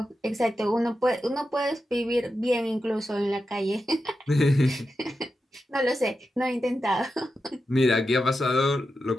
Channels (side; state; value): both; normal; correlation 0.89